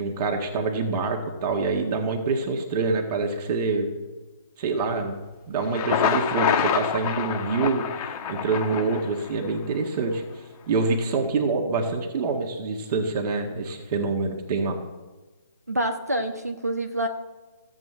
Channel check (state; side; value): inverted; both; correlation -0.37